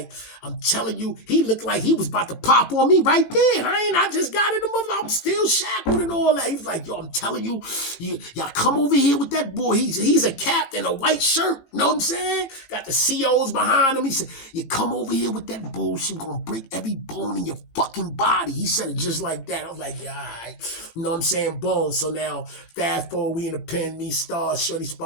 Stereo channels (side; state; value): right; late; 18 ms